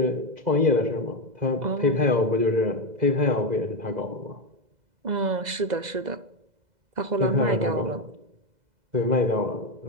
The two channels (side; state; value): left; late; 2.0 ms